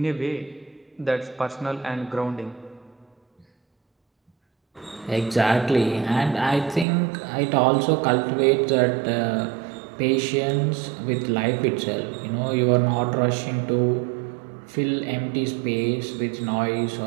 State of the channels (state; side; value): drops out; left; at 6.9 s